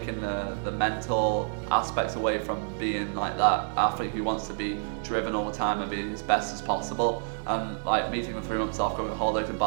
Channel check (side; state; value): left; silent; digital silence